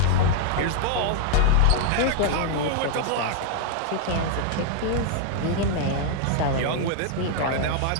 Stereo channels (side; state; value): both; different; correlation 0.00